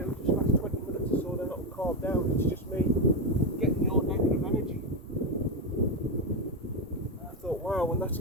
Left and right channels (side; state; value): both; normal; correlation 0.09